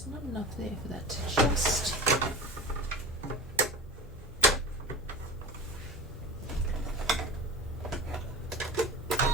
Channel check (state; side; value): normal; both; correlation 0.31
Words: not enough there for that to just